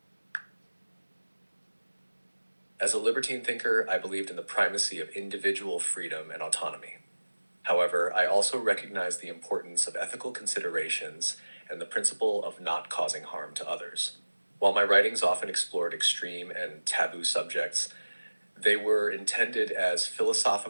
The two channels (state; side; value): inverted; both; correlation -1.00